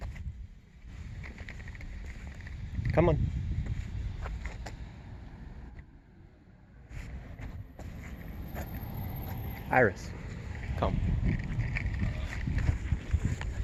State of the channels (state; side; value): identical; both; correlation 1.00